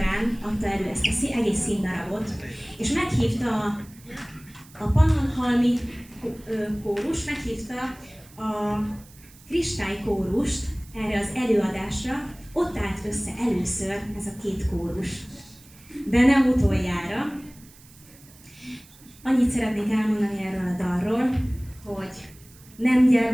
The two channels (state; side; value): noise; right; hiss, 24 dB below the sound